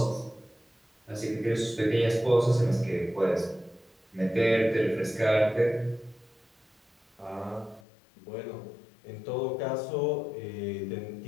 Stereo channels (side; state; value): right; drops out; at 7.8 s